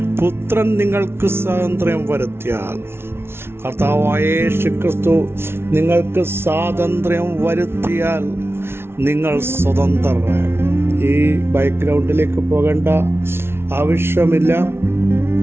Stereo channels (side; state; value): left; late; 0.12 ms